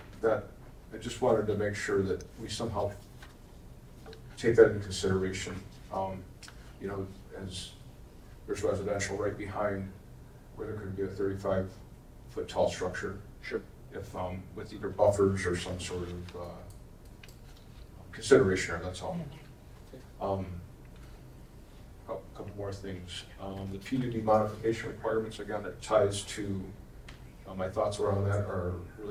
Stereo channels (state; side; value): identical; both; correlation 1.00